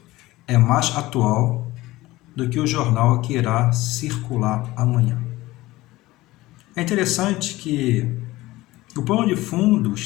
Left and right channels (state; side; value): quieter; right; 18.4 dB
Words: é mais atual do que o jornal que irá circular amanhã. É interessante que o plano de fundo